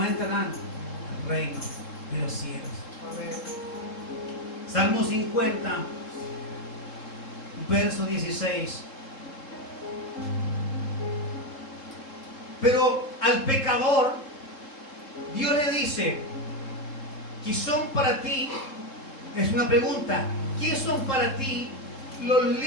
entrarán al reino de los cielos. Amén. Salmo 50, verso 16. Pero al pecador, Dios le dice, ¿qué son para ti? Es una pregunta. ¿Qué son para ti los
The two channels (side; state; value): right; late; 3.7 ms